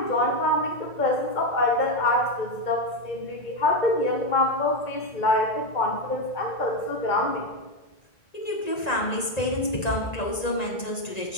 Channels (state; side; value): late; right; 1.9 ms